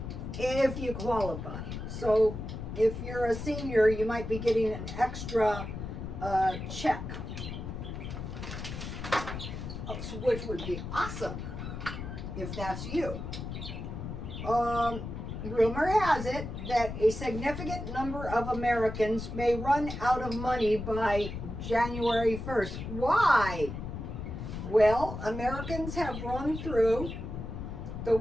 if you qualify. So if you're a senior, you might be getting an extra check, which would be awesome if that's you. Rumor has it that a significant number of Americans may run out of money by January 1st. Why? Well, Americans have run through the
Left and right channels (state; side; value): noise; left; rumble, 7 dB below the sound